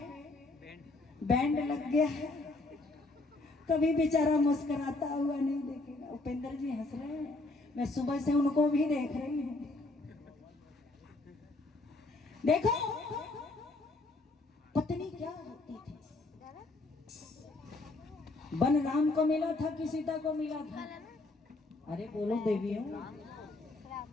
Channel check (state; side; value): quieter; right; 3.1 dB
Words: बैंड लग गया है, कभी बेचारा मुस्कुराता हुआ नहीं देखेगा। उपेंद्र जी हंस रहे हैं, मैं सुबह से उनको भी देख रही हूँ। देखो पत्नी क्या होती थी। वन राम को मिला था कि सीता को मिला था? अरे बोलो देवियों।